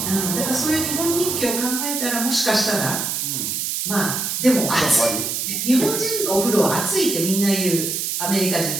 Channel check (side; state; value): right; noise; hiss, 1 dB below the sound